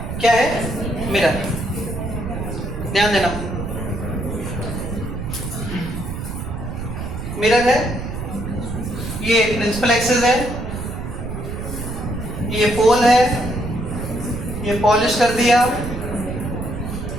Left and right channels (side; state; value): right; noise; rumble, 6 dB below the sound